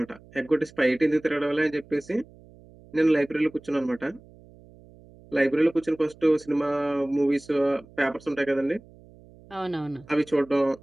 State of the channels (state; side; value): noise; right; hum, 24 dB below the sound